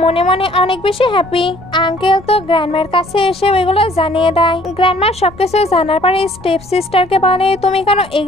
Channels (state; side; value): noise; left; rumble, 22 dB below the sound